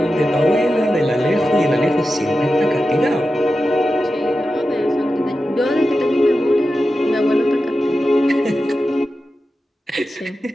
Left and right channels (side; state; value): both; normal; correlation 0.92